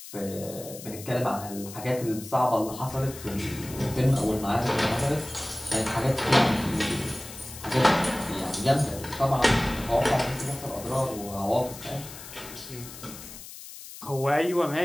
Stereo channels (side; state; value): left; noise; hiss, 14 dB below the sound